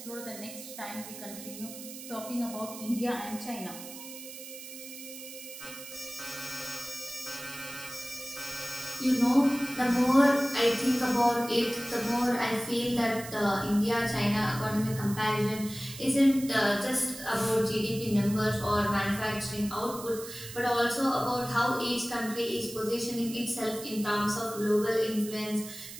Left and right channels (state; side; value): noise; right; hiss, 12 dB below the sound